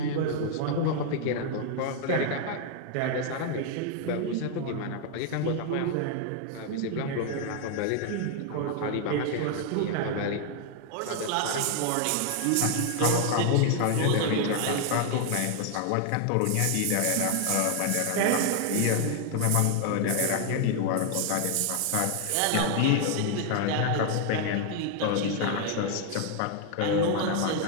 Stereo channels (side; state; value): both; different; correlation 0.00